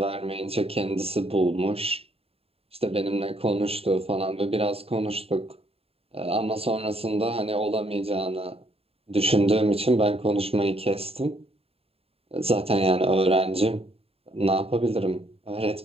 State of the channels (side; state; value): left; late; 0.28 ms